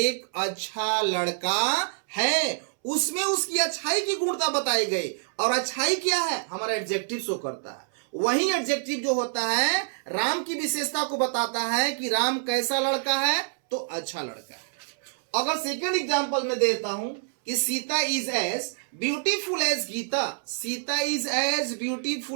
अच्छा लड़का है, उसमें उसकी अच्छाई की गुणता बताई गई। और अच्छाई क्या है, हमारा एडजेक्टिव शो करता है। वही एडजेक्टिव जो होता है राम की विशेषता को बताता है कि राम कैसा लड़का है, तो अच्छा लड़का है। अगर सेकंड एग्जांपल में देता हूं कि Sita is as beautiful as Gita, Sita is as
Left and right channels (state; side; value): silent; left; 60 dB below the other